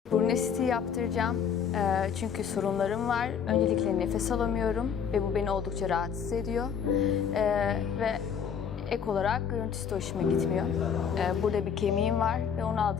Burun estetiği yaptıracağım. Çünkü sorunlarım var. Öncelikle nefes alamıyorum ve bu beni oldukça rahatsız ediyor. Ve ek olarak görüntüsü de hoşuma gitmiyor. Burada bir kemiğim var ve onu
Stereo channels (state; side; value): quieter; right; 7.4 dB